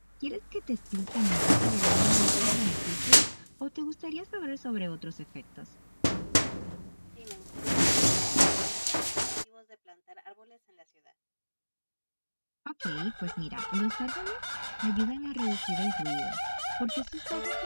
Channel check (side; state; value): both; inverted; correlation -1.00